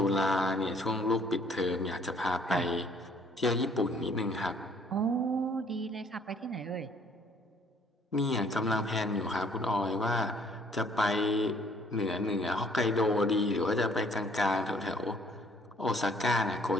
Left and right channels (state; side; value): normal; both; correlation 0.60